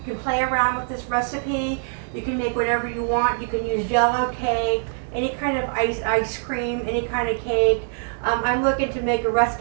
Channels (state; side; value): silent; left; digital silence